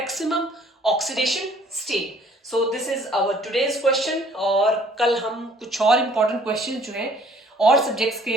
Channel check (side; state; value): both; normal; correlation 0.57